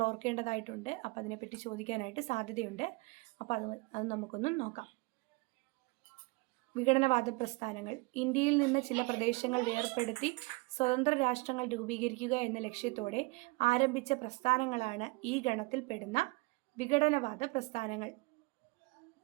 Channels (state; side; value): quieter; left; 25.8 dB